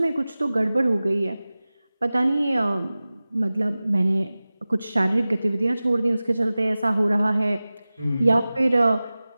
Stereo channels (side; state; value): both; inverted; correlation -0.97